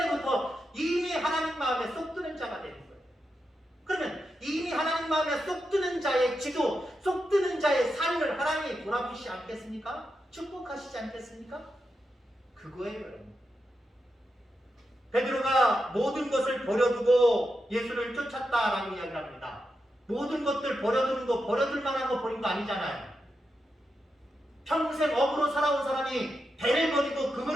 이미 하나님 마음에 쏙 드는 자가 되는 거예요. 그러면 이미 하나님 마음에 쏙 드는 자의 기도, 쏙 드는 자의 삶을 하나님이 돌아보시지 않겠습니까? 축복하시지 않겠습니까? 그거예요, 여러분. 베드로가 모든 것을 버려두고 예수를 쫓았다라고 이야기를 합니다. 모든 것들 버려두는 거, 버려둘 만한 거 버린 거 아니잖아요. 평생 업으로 살아온 사람이 배를 버리고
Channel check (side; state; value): both; normal; correlation 0.87